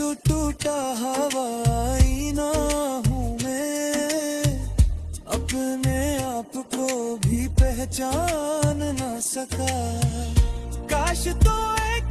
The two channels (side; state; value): both; identical; correlation 1.00